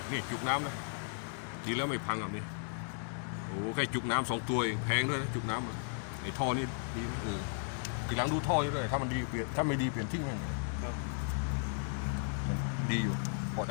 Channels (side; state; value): right; silent; 54 dB below the other